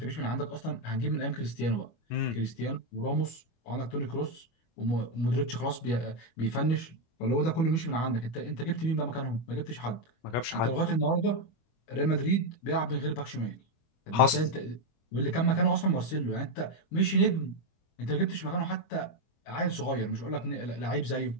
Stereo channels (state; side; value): late; right; 25 ms